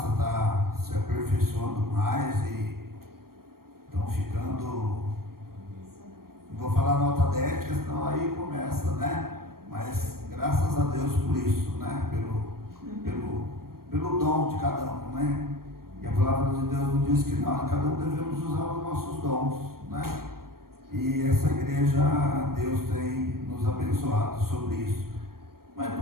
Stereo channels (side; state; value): left; late; 0.93 ms